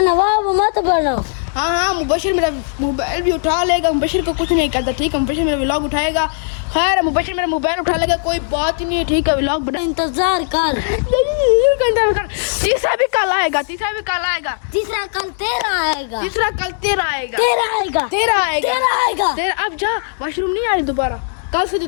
नवाब मत बनो। हाँ हाँ मुबशिर मेरा मोबाइल भी उठा लेगा। मुबशिर को कुछ नहीं करता, ठीक है? मुबशिर मेरा व्लॉग उठाएगा। खैर मुबशिर मेरा मोबाइल उठा लेगा, कोई बात ही नहीं है, ठीक है? व्लॉग बना इंतजार कर। तीसरा भी कल आएगा, तीसरा भी कल आएगा। तीसरा कल तेरा आएगा। तीसरा कल तेरा आएगा। तेरा आएगा। तेरा आएगा। तेरा आएगा। तेरा अब जा, वॉशरूम नहीं आई दोबारा। कल से तो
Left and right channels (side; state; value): right; silent; digital silence